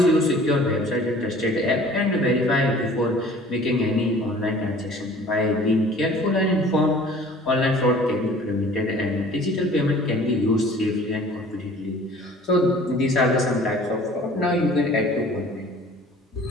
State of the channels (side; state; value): both; normal; correlation 0.49